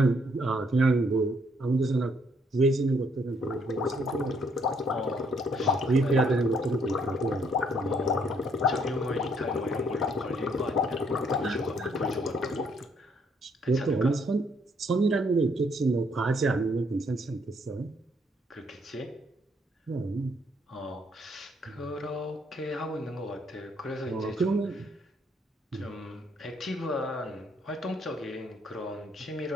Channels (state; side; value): normal; both; correlation 0.69